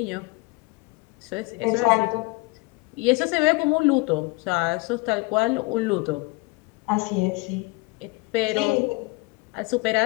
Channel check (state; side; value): quieter; right; 24.7 dB